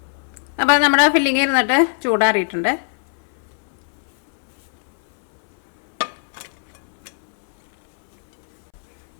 അപ്പം നമ്മുടെ ഫില്ലിങ് ഇരുന്നിട്ട് ചൂടാറിയിട്ടുണ്ട്.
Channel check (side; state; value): right; silent; 65 dB below the other